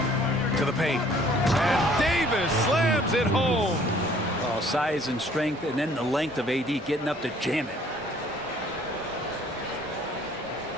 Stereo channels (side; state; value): both; normal; correlation 0.57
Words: To the paint. And Davis slams it home. Oh, size and strength, and then the length of AD getting up to jam it.